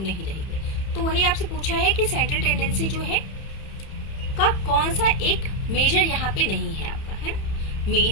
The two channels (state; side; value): late; right; 31 ms